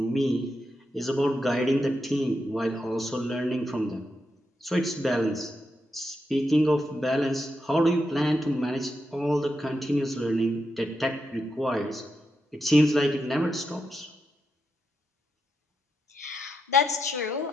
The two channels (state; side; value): normal; both; correlation 0.85